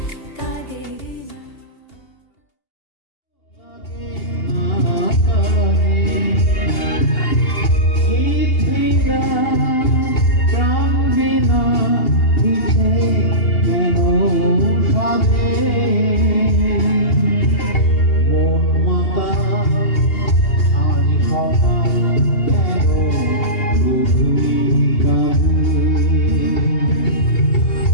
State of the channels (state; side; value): late; right; 2.8 ms